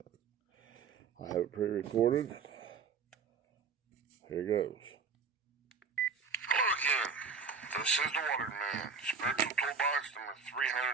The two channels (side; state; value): left; quieter; 5.5 dB